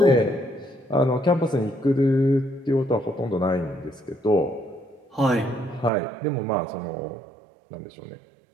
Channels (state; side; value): drops out; left; at 5.9 s